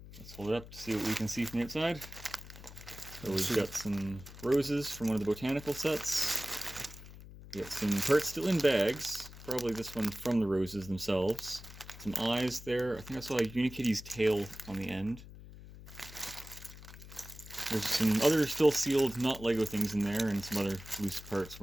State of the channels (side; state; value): left; noise; hum, 16 dB below the sound